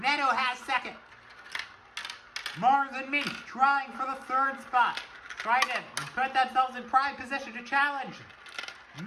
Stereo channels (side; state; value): both; identical; correlation 1.00